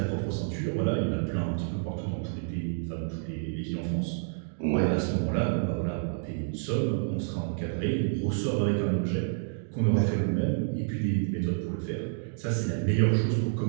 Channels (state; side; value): silent; left; digital silence